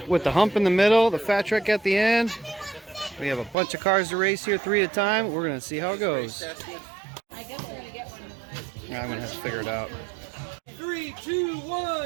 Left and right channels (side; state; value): left; drops out; at 3.6 s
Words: the hump in the middle, the fat track at the end. We have a bunch of cars to race here, 3 at a time. We're gonna see how it goes. Yeah, I'm gonna have to figure it out. 3, 2,